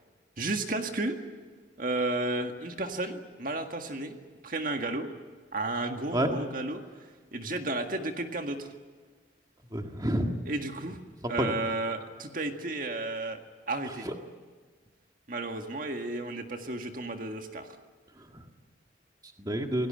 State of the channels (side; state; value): both; normal; correlation 0.36